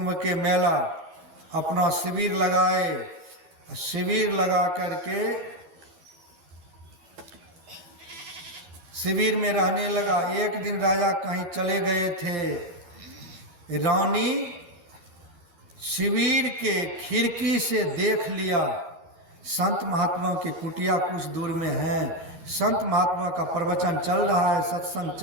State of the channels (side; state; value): left; late; 13 ms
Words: के मेला, अपना शिविर लगाए। शिविर लगा करके शिविर में रहने लगा। एक दिन राजा कहीं चले गए थे। रानी शिविर के खिड़की से देख लिया, संत महात्माओं की कुटिया कुछ दूर में है। संत महात्मा का प्रवचन चल रहा है, सत्संग